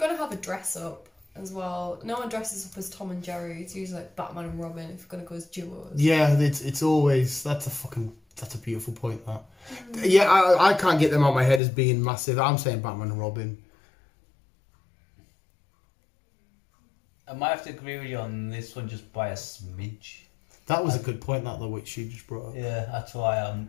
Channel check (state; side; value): drops out; right; at 11.6 s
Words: have a dress up as well, no one dresses up as Tom and Jerry, it's usually like Batman and Robin if you're gonna go as duos. Yeah, it's always that's a beautiful point. That. Yeah, I can't get them out of my head as being massive. I'm saying Batman and Robin. I might have to agree with you on this one just by a smidge. That was a good point, that though, which you just brought up. Yeah, that's why